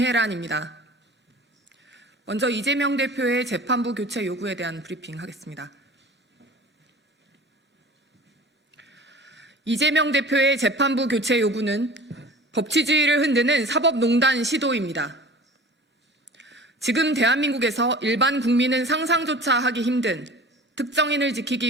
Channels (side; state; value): both; normal; correlation 0.41